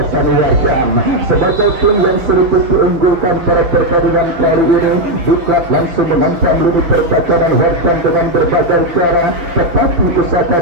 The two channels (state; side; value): late; left; 5.9 ms